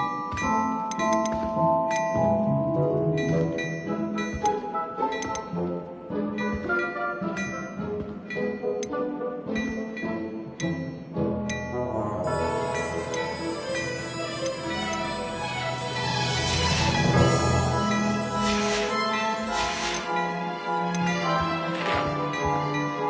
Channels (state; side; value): identical; both; correlation 1.00